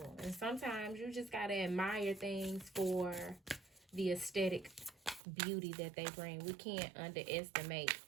And sometimes you just got to admire things for the aesthetic beauty that they bring. We can't underestimate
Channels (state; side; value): drops out; left; at 5.2 s